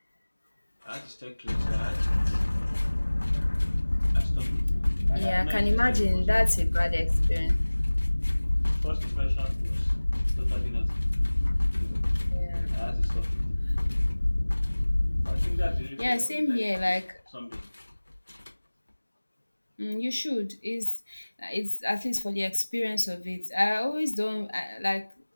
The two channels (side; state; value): both; inverted; correlation -1.00